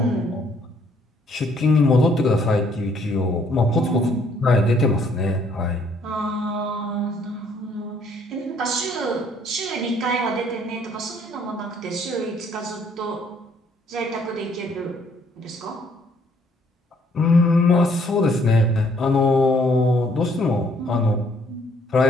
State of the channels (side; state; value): both; normal; correlation 0.65